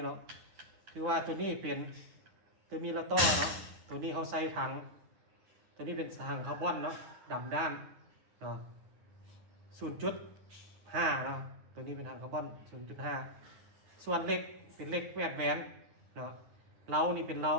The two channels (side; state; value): left; late; 9.8 ms